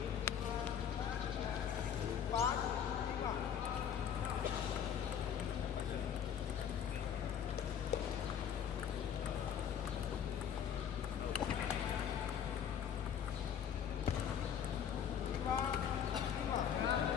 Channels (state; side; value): quieter; right; 8.5 dB